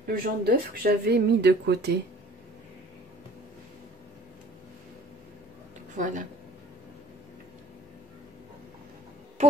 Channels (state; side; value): normal; both; correlation 0.50